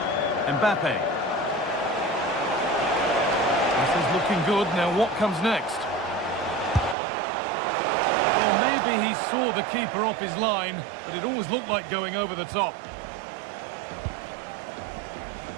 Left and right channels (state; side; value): drops out; left; at 7.0 s